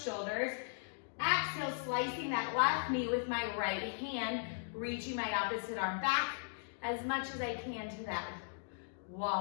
shoulders. Exhale, slicing that left knee with my right hand, reaching my opposite arm back as much as I can to that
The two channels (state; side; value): silent; right; digital silence